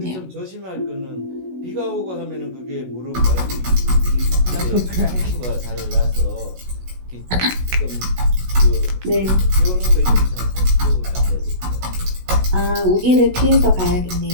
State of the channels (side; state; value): left; late; 16 ms